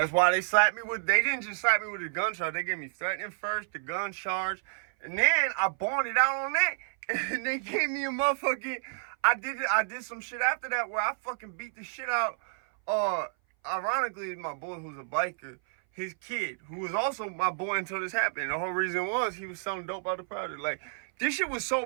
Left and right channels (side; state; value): left; silent; 57 dB below the other